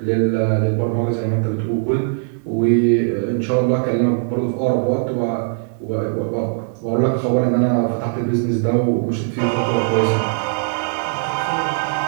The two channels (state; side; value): silent; left; 58 dB below the other